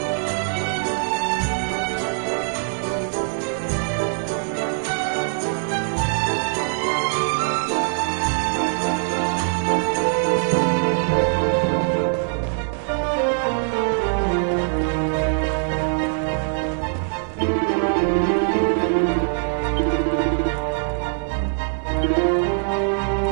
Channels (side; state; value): left; silent; 64 dB below the other